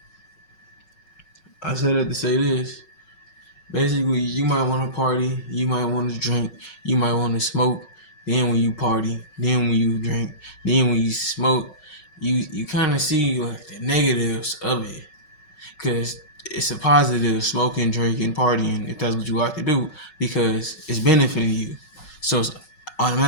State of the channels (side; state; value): right; late; 5.4 ms